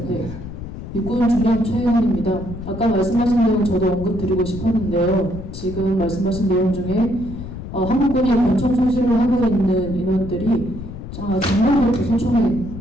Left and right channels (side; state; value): left; noise; rumble, 10 dB below the sound